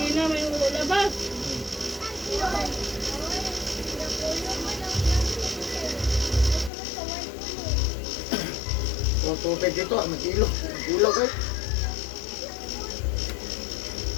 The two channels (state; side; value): drops out; right; at 6.7 s